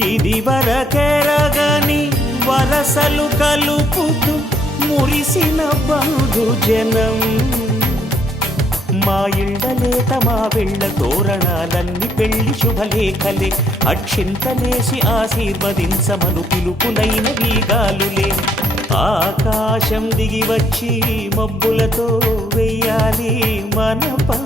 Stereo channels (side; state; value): both; normal; correlation 0.69